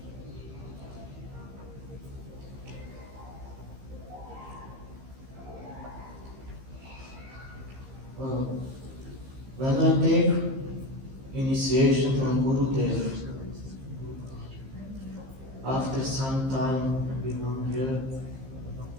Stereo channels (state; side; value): late; left; 15 ms